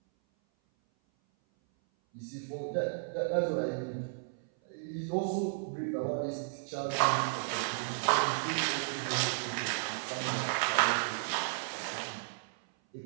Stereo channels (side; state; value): left; silent; 55 dB below the other